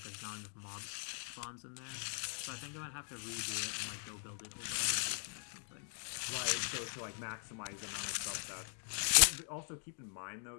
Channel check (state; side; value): silent; right; 51 dB below the other